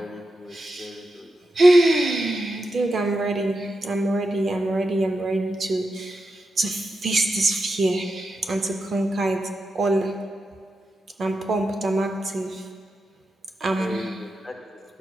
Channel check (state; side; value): normal; both; correlation 0.88